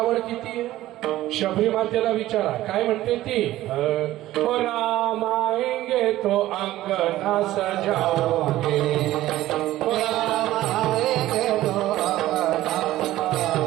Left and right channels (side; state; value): left; quieter; 15.2 dB